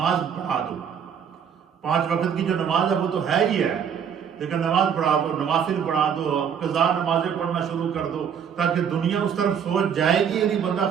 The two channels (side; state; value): left; quieter; 7.8 dB